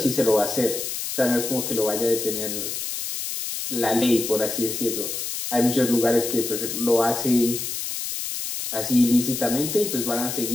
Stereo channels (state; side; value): noise; left; hiss, 4 dB below the sound